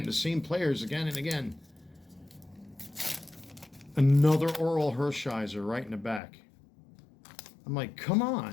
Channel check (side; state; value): right; drops out; at 6.2 s